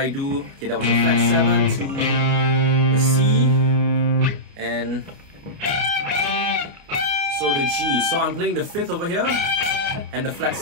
do? Okay, that was a flat 7 to the C and so the G. So I'm playing the 5th over here and the flat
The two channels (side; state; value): left; late; 29 ms